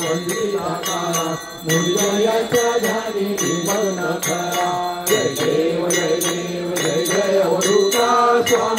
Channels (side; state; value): both; identical; correlation 1.00